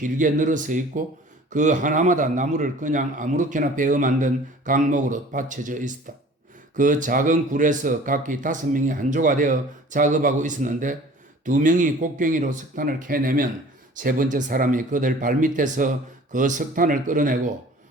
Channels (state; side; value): normal; both; correlation 0.47